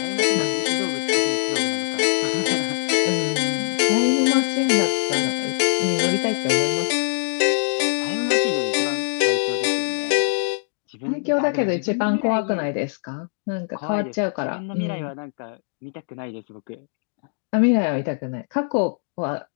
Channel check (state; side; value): silent; right; digital silence